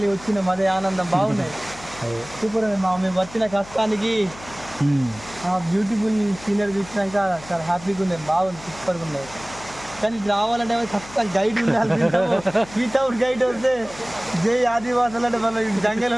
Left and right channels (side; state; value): left; noise; hum, 18 dB below the sound